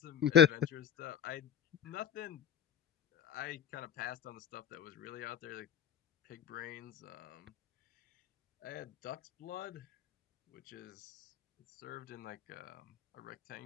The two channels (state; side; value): quieter; right; 8.6 dB